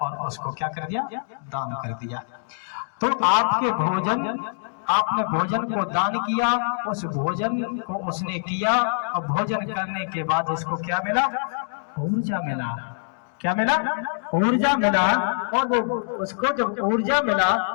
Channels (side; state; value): right; silent; digital silence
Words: और उसको क्या कर दिया, दान कर दिया। तो आपके आपने भोजन को दान किया, उस भोजन को उसने किया और भोजन करने के बाद उसको क्या मिला, ऊर्जा मिला। क्या मिला, ऊर्जा मिला। और वो उसको जब ऊर्जा मिला